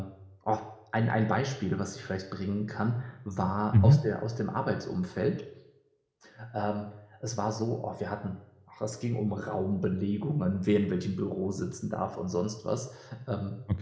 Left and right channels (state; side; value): identical; both; correlation 1.00